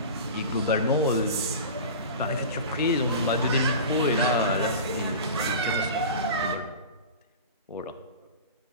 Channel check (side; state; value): both; inverted; correlation -0.33